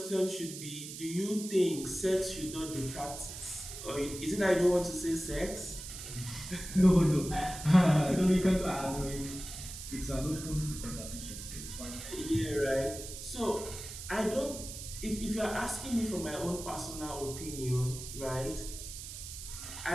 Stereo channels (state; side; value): noise; right; hiss, 10 dB below the sound